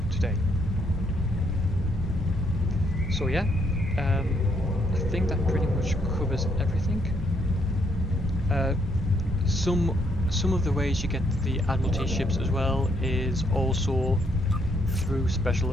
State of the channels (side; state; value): both; normal; correlation 0.73